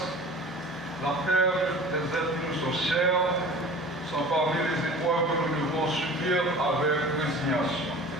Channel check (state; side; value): normal; both; correlation 0.41